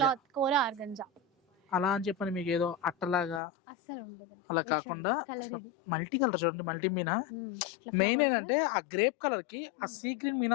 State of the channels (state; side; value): drops out; right; at 3.4 s